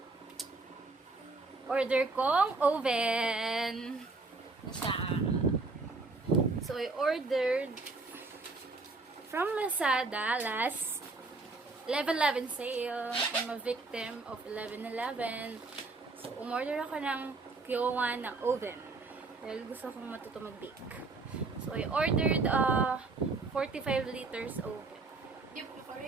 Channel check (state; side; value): quieter; left; 3.7 dB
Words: order kong oven. Na siya. So, I ordered from Lazada last 11/11 sale. I'm a victim of 11/11. So, umorder ako ng Kyowa na oven. Dahil gusto kong matuto mag-bake. So, I ordered 45 liters oven. Di mo